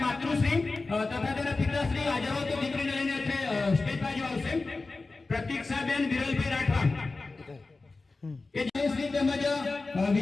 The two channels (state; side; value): quieter; right; 3.6 dB